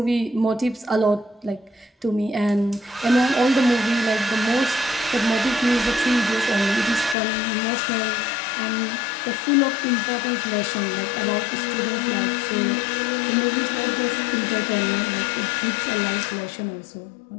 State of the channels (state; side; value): drops out; right; at 7.2 s